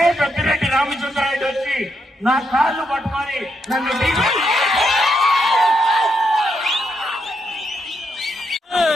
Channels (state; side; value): normal; both; correlation 0.80